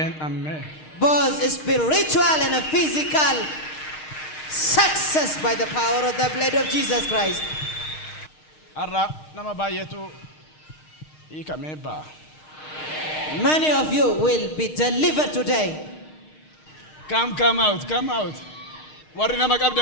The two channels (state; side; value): late; right; 6.5 ms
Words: Both spiritual and physical success by the power of the blood of Jesus Christ. Many of you will be delivered today. Come out.